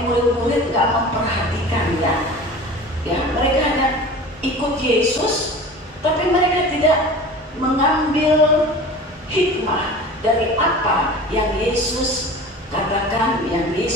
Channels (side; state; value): both; normal; correlation 0.38